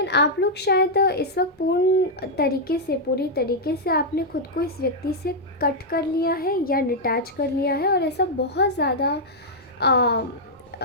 आप लोग शायद इस वक्त पूरी तरीके से आपने खुद को इस व्यक्ति से कट कर लिया है या डिटैच कर लिया है, और ऐसा बहुत ज़्यादा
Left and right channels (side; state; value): both; normal; correlation -0.05